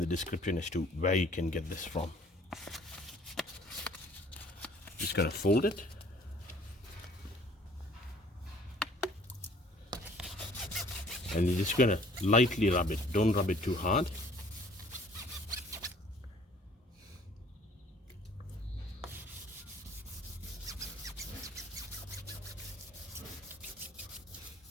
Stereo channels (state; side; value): normal; both; correlation 0.55